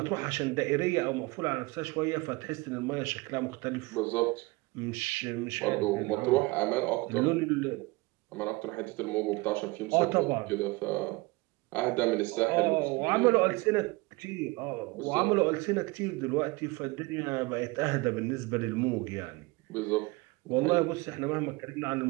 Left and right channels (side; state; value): left; quieter; 23.9 dB